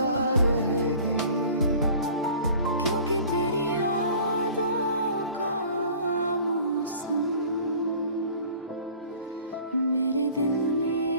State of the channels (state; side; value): inverted; both; correlation -0.46